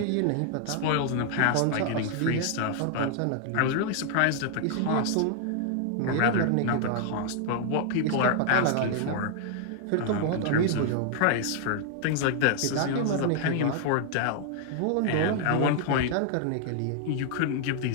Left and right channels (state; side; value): different; both; correlation 0.00